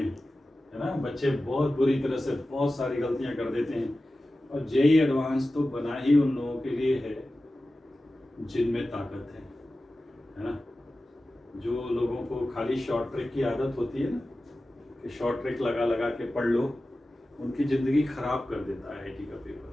है ना। बच्चे बहुत बुरी तरह से बहुत सारी गलतियां कर देते हैं। और जेई एडवांस तो बना ही उन लोगों के लिए है जिनमें ताकत है ना। जो लोगों को खाली शॉर्ट ट्रिक की आदत होती है ना, कि शॉर्ट ट्रिक लगा लगा के पढ़ लो, उनकी ज़िंदगी ख़राब कर देता है आईटी का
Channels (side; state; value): both; normal; correlation 0.95